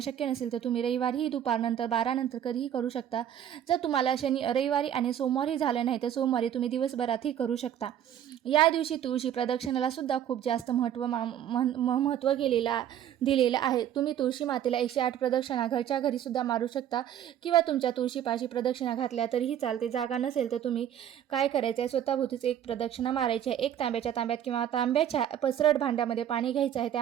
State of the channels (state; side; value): quieter; left; 10.3 dB